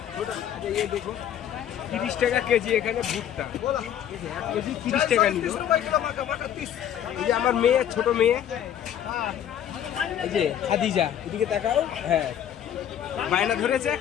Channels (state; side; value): quieter; right; 10.1 dB